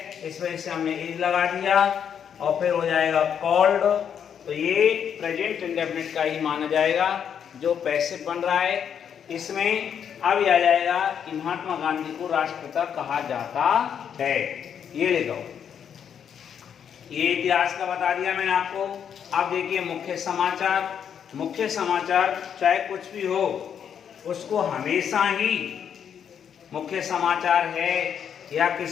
इस वजह से हमने इज लगा दिया और फिर हो जाएगा कॉल्ड, तो ये प्रेजेंट इंडेफिनिट का ही माना जाएगा जो पैसिव बन रहा है। इसमें अब आ जाएगा कि महात्मा गांधी को राष्ट्रपिता कहा जाता है, ये लिखो। ये इतिहास का बता दिया मैंने आपको। अब देखिए मुख्य समाचार। मुख्य समाचार चाहे कुछ भी हो उसको हमेशा ही मुख्य समाचार है या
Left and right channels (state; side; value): quieter; right; 8.1 dB